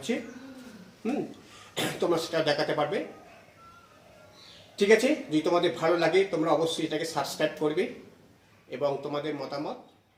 তোমরা সেটা দেখাতে পারবে। ঠিক আছে, যদি তোমাদের ভালো লাগে তোমরা অবশ্যই এটাকে সাবস্ক্রাইব করবে এবং তোমাদের মতামত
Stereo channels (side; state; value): both; identical; correlation 1.00